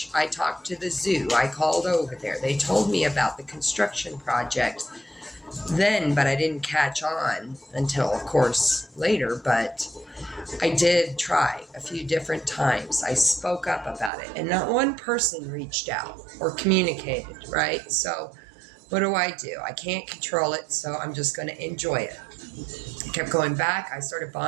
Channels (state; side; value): drops out; left; at 14.1 s